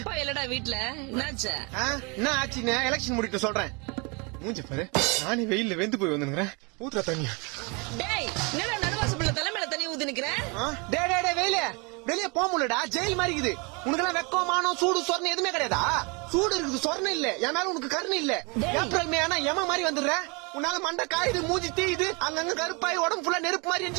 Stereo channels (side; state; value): left; quieter; 30.7 dB